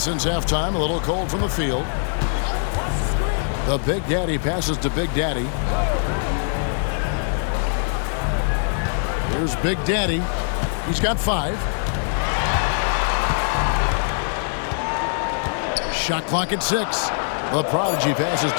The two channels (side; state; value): right; silent; 61 dB below the other